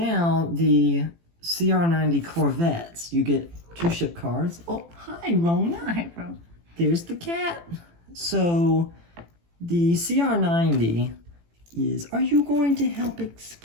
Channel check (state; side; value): late; left; 18 ms